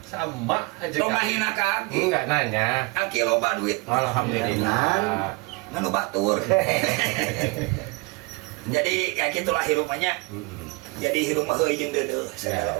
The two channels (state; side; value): quieter; left; 26.2 dB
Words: Sama aja. lo ngahina ka Aki Enggak nanya. Aki loba duit Alhamdulillah. nganu batur jadi ya gitulah hirupannya jadi hirup mah heuy jeung deudeuh segala